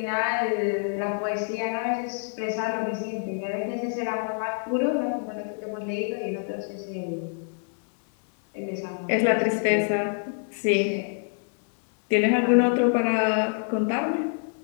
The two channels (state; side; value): silent; right; 60 dB below the other